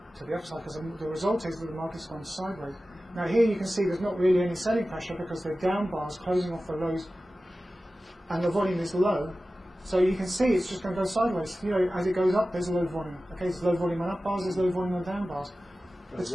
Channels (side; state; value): both; normal; correlation 0.95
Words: to the upside, because the result is that the market's gone sideways. Now here you can see there's not really any selling pressure because the down bars closing off the lows and the volume is low. So you can see it's just going to go sideways. As it goes up, there's low volume. Okay, there's low volume on up bars, there's low volume on down bars. It's